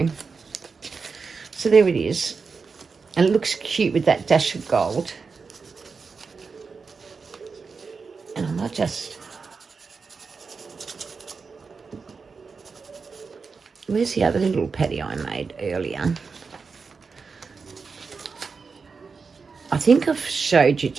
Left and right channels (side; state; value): left; quieter; 4.9 dB